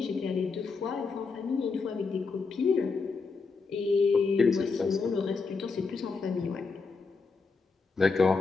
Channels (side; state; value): right; quieter; 4.5 dB